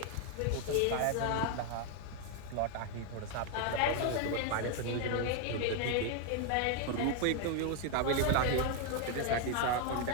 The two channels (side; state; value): both; different; correlation 0.01